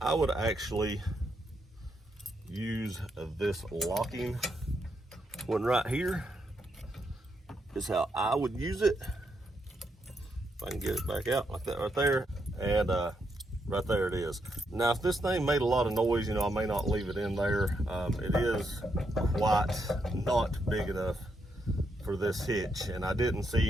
would actually use this locking one right here. Is how I would use it. If I can get it back out like that right there, and right there it is. Now if this thing made a lot of noise, you know, I may not leave it in there. It is quite not big enough for this hitch, and I didn't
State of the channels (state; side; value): normal; both; correlation 0.79